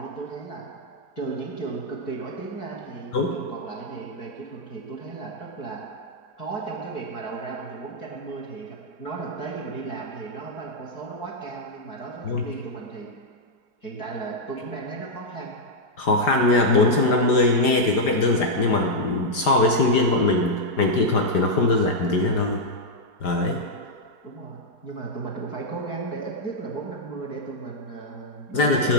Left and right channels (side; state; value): right; late; 5.0 ms